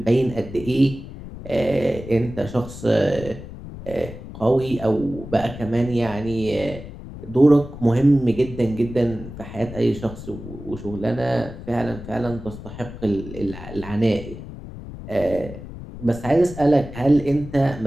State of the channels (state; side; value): noise; left; rumble, 12 dB below the sound